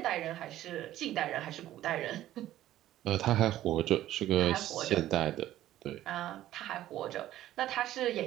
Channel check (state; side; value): quieter; left; 13.6 dB